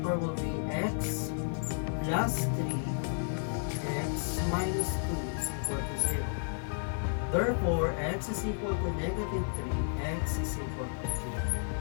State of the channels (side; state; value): right; silent; digital silence